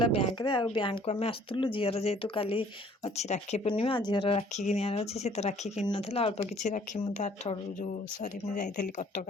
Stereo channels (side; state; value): both; normal; correlation 0.57